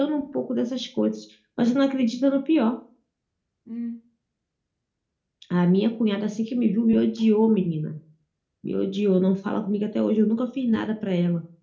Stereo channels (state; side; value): identical; both; correlation 1.00